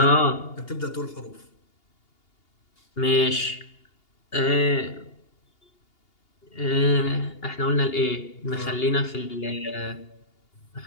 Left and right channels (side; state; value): right; late; 2.8 ms